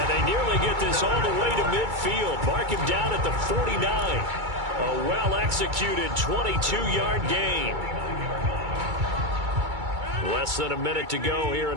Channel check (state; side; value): late; left; 2.3 ms